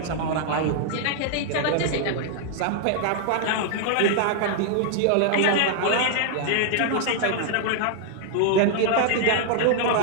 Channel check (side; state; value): both; different; correlation 0.00